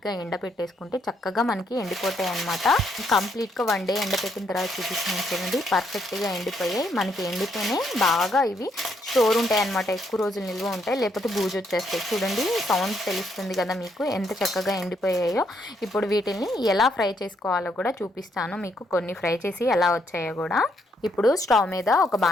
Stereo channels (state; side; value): normal; both; correlation 0.74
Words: ఎండపెట్టేసుకుంటే చక్కగా మనకి ఎండిపోతాయి అన్నమాట. కంప్లీట్గా 1 డే ఎండపెట్టిన తర్వాత చూపిస్తున్నాను చూడండి, పర్ఫెక్ట్గా ఎండిపోయాయి. మనకి ఎండితేనే బాగా ఇవి స్టోర్ ఉంటాయి అన్నమాట, ఎక్కువ రోజులు నిల్వ ఉంటాయి, లేకపోతే బూజు వచ్చేస్తాయి. చూడండి సౌండ్ తెలుస్తుంది కదా మీకు ఎంత చక్కగా ఎండిపోయాయో. ఇప్పుడు వీటిని ఎలా ఫ్రై చేసుకోవాలో కూడా చూపిస్తాను మీకు, కొన్ని ఫ్రై చేసి ఎలా వచ్చాయో కూడా. ఇప్పుడు స్టవ్ మీద ఒక